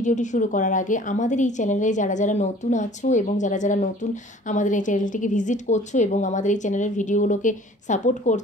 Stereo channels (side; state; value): both; normal; correlation 0.50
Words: শুরু করার আগে আমাদের এই চ্যানেলে যারা যারা নতুন আছো এবং যারা যারা নতুন আমাদের এই চ্যানেলটিকে ভিজিট করছো এবং আমাদের এই চ্যানেলের ভিডিওগুলোকে সাপোর্ট